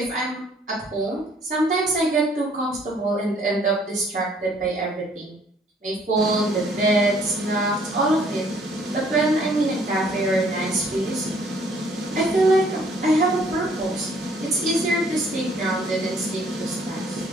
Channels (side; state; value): both; normal; correlation 0.61